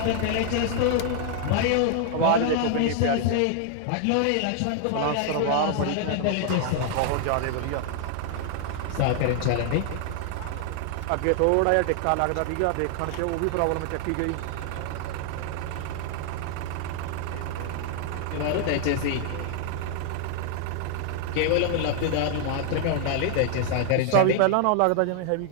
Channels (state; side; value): different; both; correlation 0.00